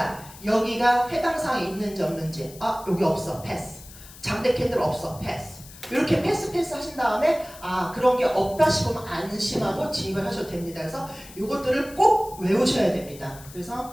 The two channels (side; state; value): left; noise; hiss, 18 dB below the sound